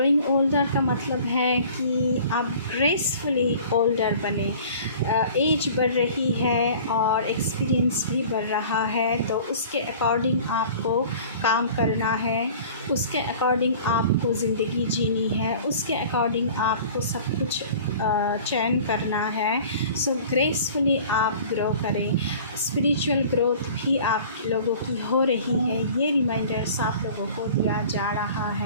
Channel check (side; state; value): both; inverted; correlation -0.45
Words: ओल्डर का मतलब है कि आप ग्रेसफुली ओल्डर बने। एज बढ़ रही है और एक्सपीरियंस भी बढ़ रहा है, तो उसके अकॉर्डिंग आपको काम करना है, उसके अकॉर्डिंग आपको ज़िंदगी जीनी है, उसके अकॉर्डिंग आपको सब कुछ चयन करना है। सो ग्रेसफुली आप ग्रो करें। स्पिरिचुअल ग्रोथ भी आप लोगों की हो रही है, ये रिमाइंडर्स आप लोगों को दिया जा रहा